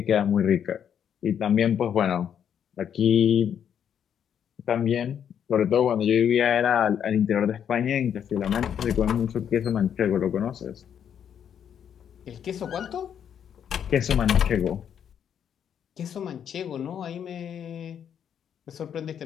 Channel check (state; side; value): quieter; right; 8.7 dB